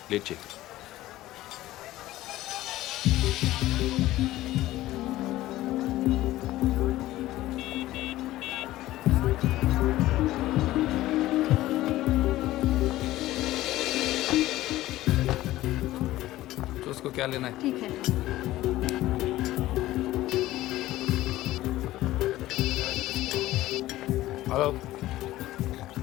లేట్ చేయకు. उसको क्या लेना है? ठीक है. हेलो,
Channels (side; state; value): right; quieter; 16.0 dB